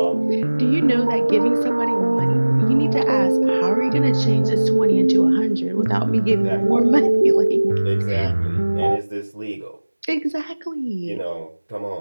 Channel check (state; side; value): inverted; both; correlation -1.00